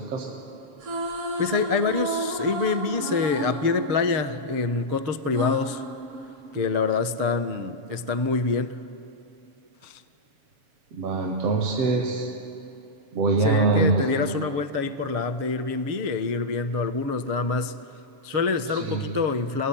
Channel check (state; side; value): late; left; 7.2 ms